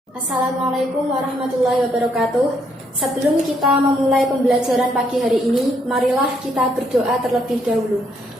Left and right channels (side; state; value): both; normal; correlation 0.72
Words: Assalamualaikum warahmatullahi wabarakatuh. Sebelum kita memulai pembelajaran pagi hari ini, marilah kita berdoa terlebih dahulu.